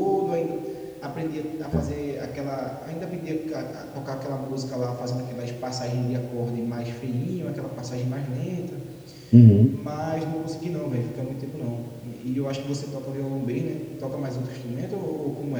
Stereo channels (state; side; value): identical; both; correlation 1.00